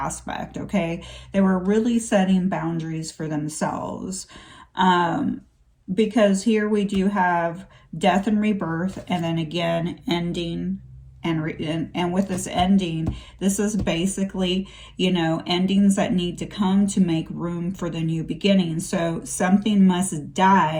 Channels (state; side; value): identical; both; correlation 1.00